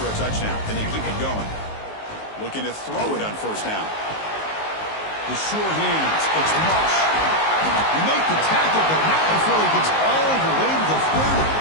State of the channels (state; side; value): late; right; 19 ms